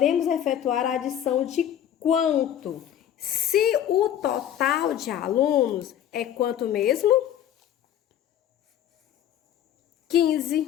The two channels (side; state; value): right; quieter; 10.5 dB